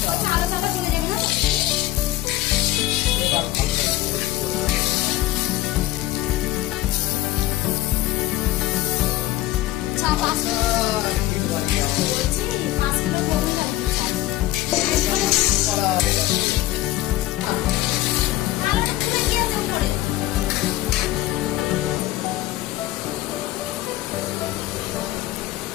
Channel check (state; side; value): quieter; right; 15.7 dB